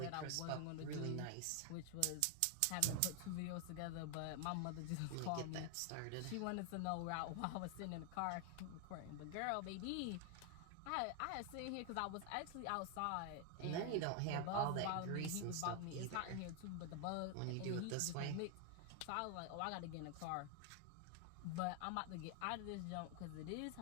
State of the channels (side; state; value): both; different; correlation 0.00